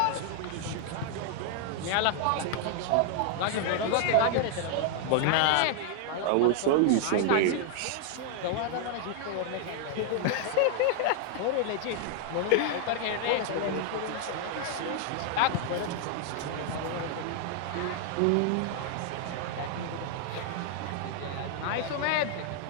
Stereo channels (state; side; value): different; both; correlation 0.00